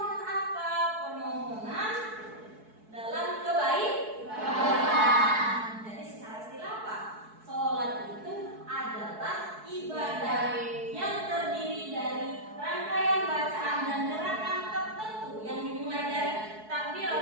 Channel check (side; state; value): left; late; 4.6 ms